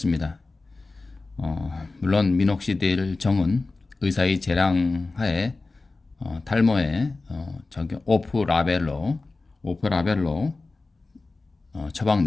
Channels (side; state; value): right; quieter; 3.5 dB